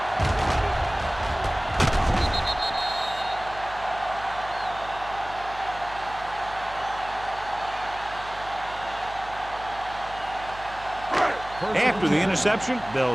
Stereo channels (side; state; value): right; noise; hum, 16 dB below the sound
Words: After the interception,